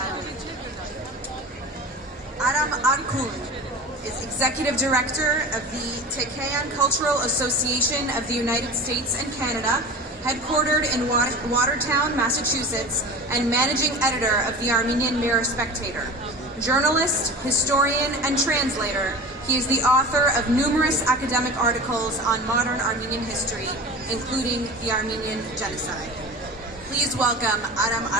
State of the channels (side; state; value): both; normal; correlation 0.34